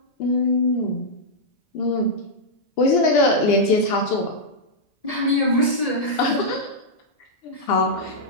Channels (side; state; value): right; late; 1.7 ms